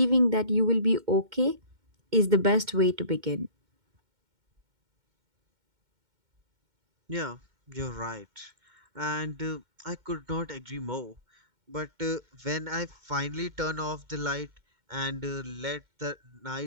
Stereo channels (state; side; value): late; left; 2.1 ms